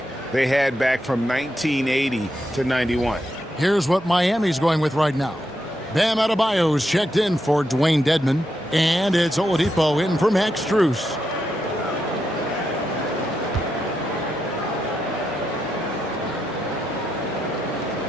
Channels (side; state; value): both; normal; correlation 0.84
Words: they had back from 1980 to 91. Here's what Miami's going with right now. Bam Adebayo's checked in for Dwayne Dedmon. And it's Oladipo in for Max Strus.